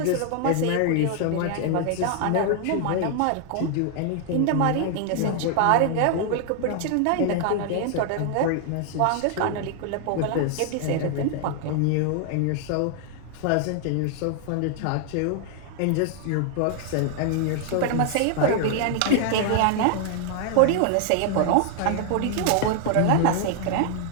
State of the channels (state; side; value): different; both; correlation 0.00